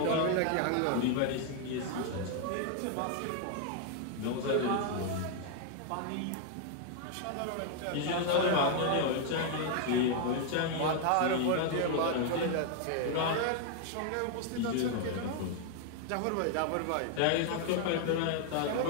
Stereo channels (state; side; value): different; both; correlation 0.00